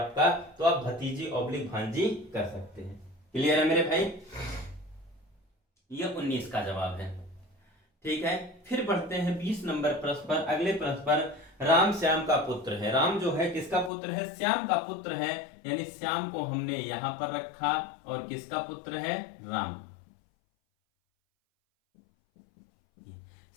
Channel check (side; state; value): right; drops out; at 13.9 s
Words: तो आप भतीजी ऑब्लिक भांजी कर सकते हैं। क्लियर है मेरे भाई, यह 19 का जवाब है। ठीक है, फिर बढ़ते हैं 20 नंबर प्रश्न पर। अगले प्रश्न पर राम श्याम का पुत्र है। राम जो है किसका पुत्र है, श्याम का पुत्र है, यानी श्याम को हमने यहां पर रखा, और किसका पुत्र है, राम।